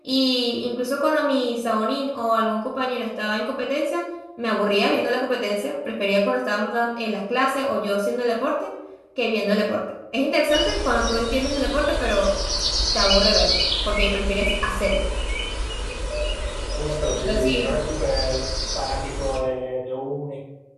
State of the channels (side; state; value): both; identical; correlation 1.00